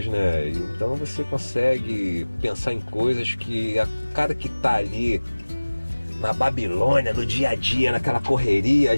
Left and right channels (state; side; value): inverted; both; correlation -1.00